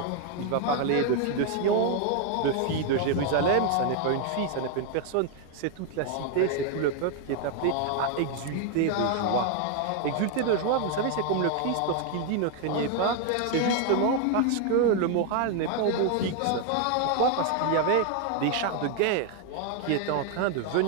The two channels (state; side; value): different; both; correlation 0.00